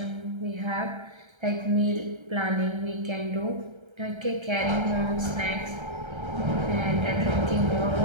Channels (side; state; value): left; late; 1.3 ms